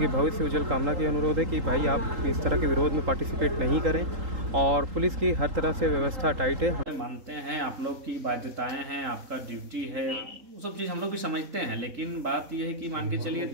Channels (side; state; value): left; late; 3.8 ms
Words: भविष्य उज्जवल कामना की अनुरोध है कि भाई आप इस तरह के विरोध में पार्टिसिपेट नहीं करें और पुलिस की हर तरह से व्यवस्था टाइट है। मानते हैं आप लोग की बाध्यताएं हैं, आपका ड्यूटी है, वो सब चीज़ हम लोग भी समझते हैं, लेकिन बात यह है कि मान के चलिए